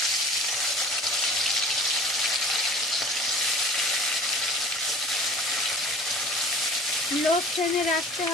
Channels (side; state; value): both; normal; correlation 0.44